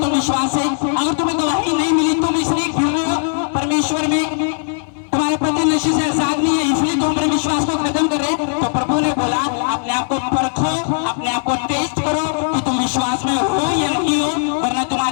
तो विश्वास से, अगर तुम्हें गवाही नहीं मिली तुम इसलिए गिर रहे हो परमेश्वर में, तुम्हारे पति नशे से आजाद नहीं है इसलिए तुम अपने विश्वास को खत्म कर रहे, तो प्रभु ने बोला अपने आप को परखो, अपने आप को टेस्ट करो कि तुम विश्वास में हो या नहीं हो, वरना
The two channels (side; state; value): right; silent; digital silence